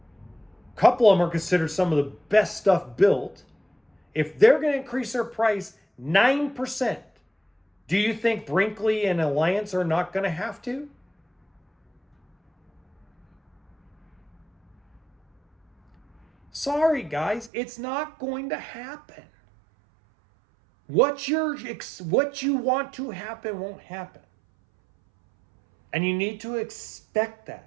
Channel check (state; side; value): drops out; left; at 17.5 s